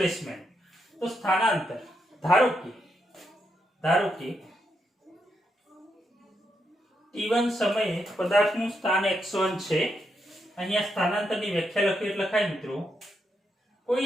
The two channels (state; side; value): normal; both; correlation 0.81